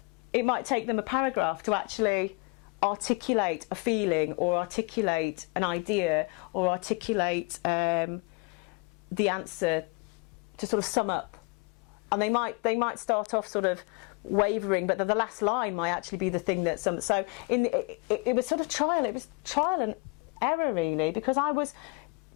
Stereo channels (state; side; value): quieter; right; 27.6 dB